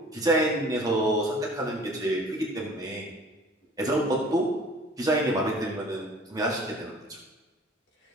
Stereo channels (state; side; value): normal; both; correlation 0.49